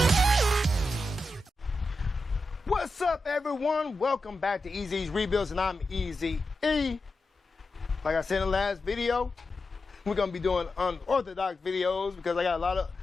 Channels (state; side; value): normal; both; correlation 0.90